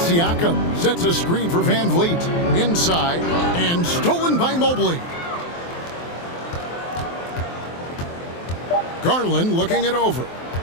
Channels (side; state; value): right; late; 23 ms